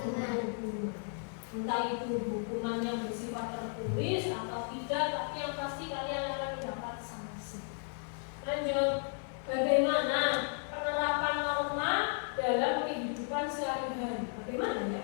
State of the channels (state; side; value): silent; right; 55 dB below the other